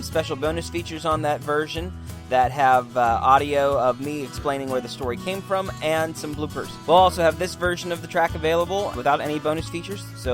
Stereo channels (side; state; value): both; identical; correlation 1.00